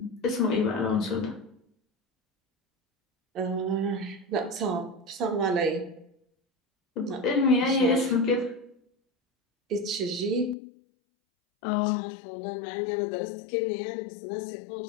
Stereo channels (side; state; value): right; drops out; at 10.6 s